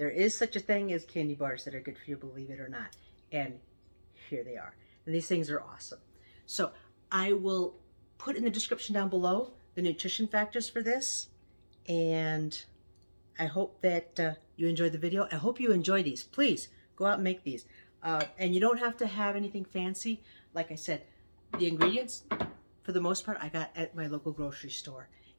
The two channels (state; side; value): inverted; both; correlation -1.00